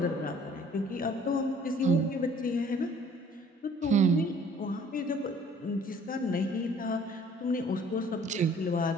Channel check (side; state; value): both; normal; correlation 0.55